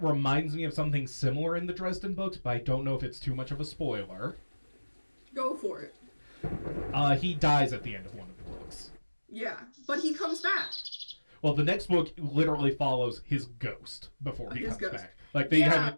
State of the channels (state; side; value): inverted; both; correlation -1.00